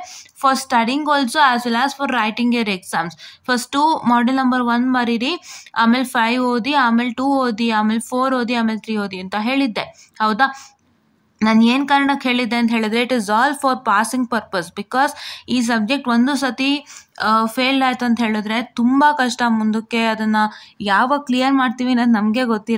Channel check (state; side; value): identical; both; correlation 1.00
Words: for studying also as well as for writing your exams. First model number 1 ಬರೀರಿ, ಆಮೇಲೆ 5 ಓದಿ, ಆಮೇಲೆ 2 ಓದಿ, ಆಮೇಲೆ 4 ಓದಿ, ಆಮೇಲೆ 3 ಓದಿ ಅಂತ ಹೇಳಿದ್ದೆ, ಹೌದಾ. ನಾನು ಏನು ಕಾರಣಕ್ಕೆ ಹೇಳಿದ್ದೆ ಅಂತ ಹೇಳಿದ್ರೆ, it is all for passing purpose. Because ಈ ಸಬ್ಜೆಕ್ಟ್ ಒಂದು ಸತಿ ಫೇಲ್ಡ್ ಆಯ್ತು ಅಂತ ಹೇಳಿದ್ರೆ ತುಂಬ ಕಷ್ಟ, ಮುಂದಕ್ಕೆ ಅದನ್ನು ಯಾವಾಗ ಕ್ಲಿಯರ್ ಮಾಡ್ತೀವಿ ಅನ್ನೋದು ನಮಗೆ